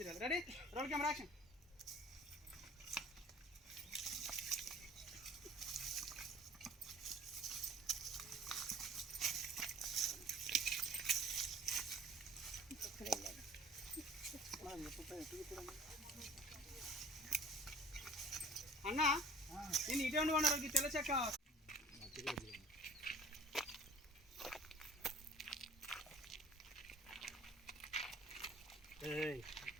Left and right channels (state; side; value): normal; both; correlation 0.47